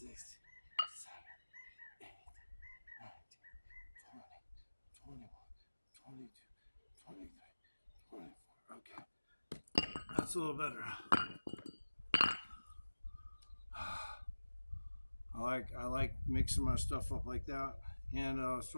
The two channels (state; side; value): inverted; both; correlation -1.00